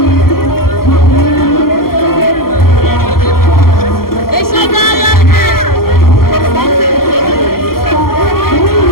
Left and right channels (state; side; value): late; right; 0.93 ms